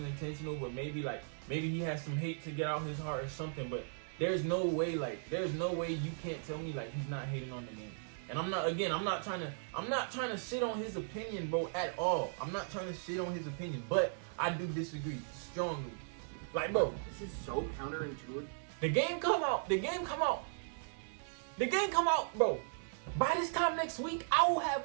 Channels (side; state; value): left; silent; 53 dB below the other